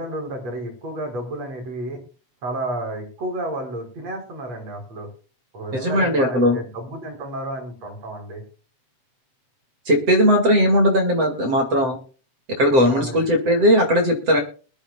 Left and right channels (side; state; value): left; late; 7.7 ms